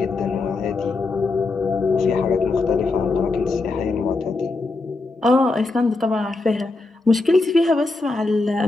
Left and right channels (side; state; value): right; quieter; 3.5 dB